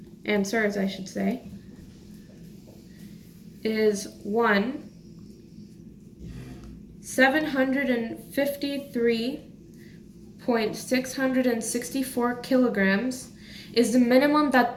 answers, I should say, is 753.664 kilograms is the minimum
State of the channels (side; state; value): both; identical; correlation 1.00